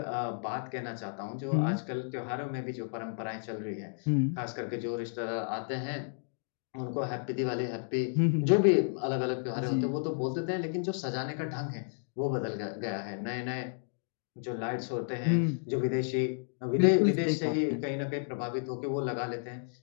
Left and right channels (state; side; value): silent; right; digital silence